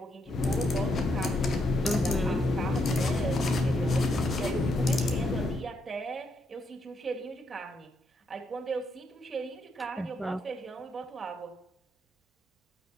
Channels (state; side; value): normal; both; correlation 0.77